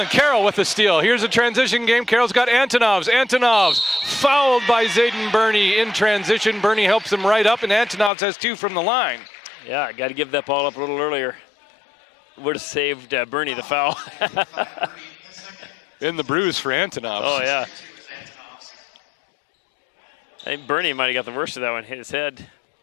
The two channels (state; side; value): drops out; right; at 8.1 s